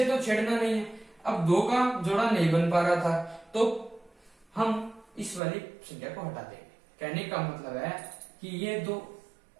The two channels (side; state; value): left; drops out; at 5.4 s